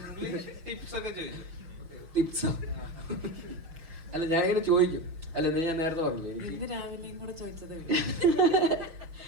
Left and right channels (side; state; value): left; late; 5.9 ms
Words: ടിപ്സോ അല്ല ഞാനിങ്ങനെ ചോദിക്കും. അല്ല ഞാൻ നേരത്തെ പറഞ്ഞു എനിക്ക് രാവിലെയും കൂടെ ചോദിച്ചത്